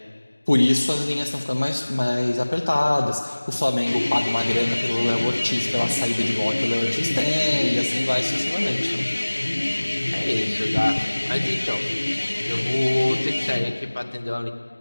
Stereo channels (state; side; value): inverted; both; correlation -1.00